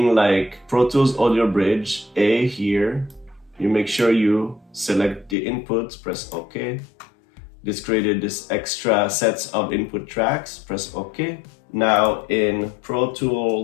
like Pro Tools Audio Bridge A here. You make sure you select the inputs, press OK. This created this extra sets of input tracks, press OK. Now in Pro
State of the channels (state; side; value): drops out; right; at 5.4 s